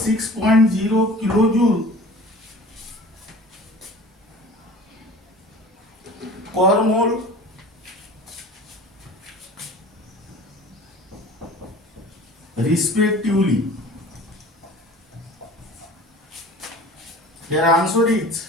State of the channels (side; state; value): both; normal; correlation 0.42